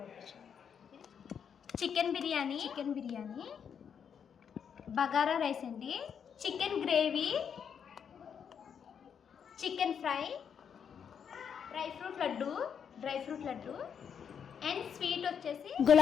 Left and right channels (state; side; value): quieter; right; 7.5 dB